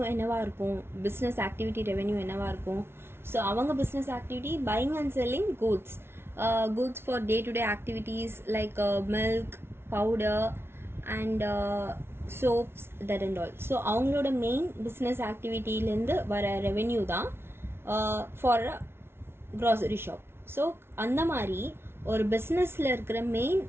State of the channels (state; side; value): late; left; 0.12 ms